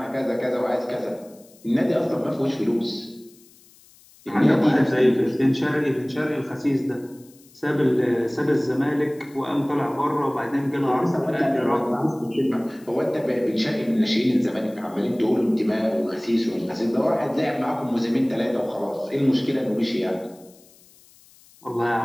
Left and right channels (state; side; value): noise; left; hiss, 27 dB below the sound